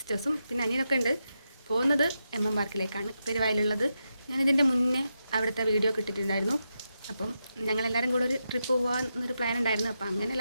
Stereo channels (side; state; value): both; inverted; correlation -0.86